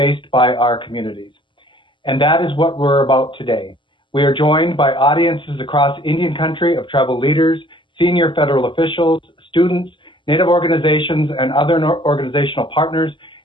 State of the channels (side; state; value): right; late; 0.24 ms